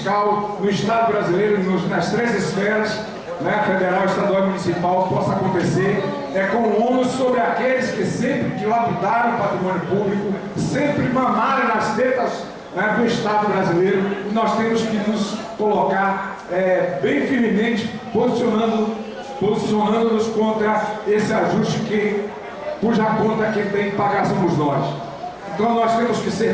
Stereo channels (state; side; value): identical; both; correlation 1.00